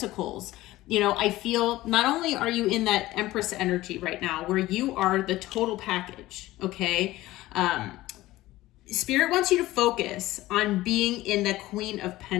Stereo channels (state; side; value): quieter; right; 17.1 dB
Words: you know, I feel not only are you in that Empress energy right now, where you are the total package, okay? Spirit wants you to focus on being in the Queen of